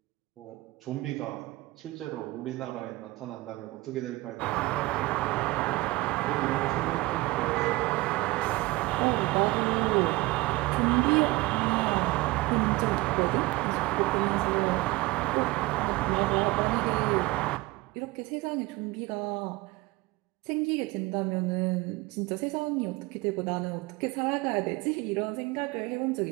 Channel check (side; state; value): left; quieter; 21.0 dB